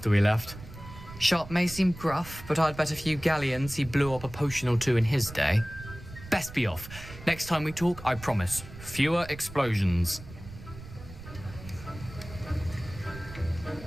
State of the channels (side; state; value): right; noise; rumble, 15 dB below the sound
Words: we left. Sharp may seem gruff, but I'd bet a few galleons he blew up a potion or two in his day. Best be off. Next time we talk, I promise, fewer explosions.